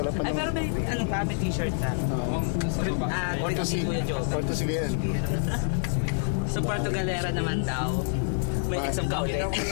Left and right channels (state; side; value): silent; right; digital silence